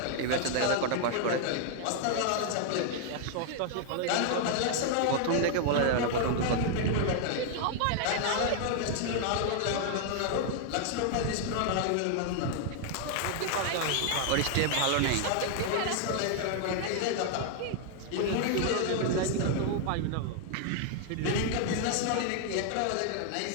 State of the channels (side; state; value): both; different; correlation 0.00